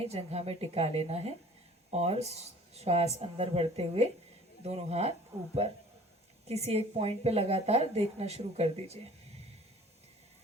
जंघा में टिका लेना है और श्वास अंदर बढ़ते हुए दोनों हाथ ऊपर। किसी एक पॉइंट पे लगातार देखना शुरू कर दीजिए।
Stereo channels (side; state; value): both; normal; correlation 0.49